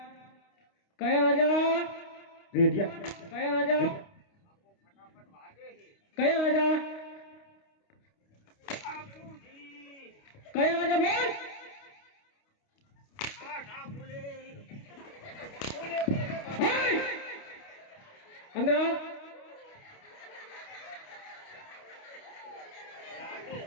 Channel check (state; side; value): late; right; 29 ms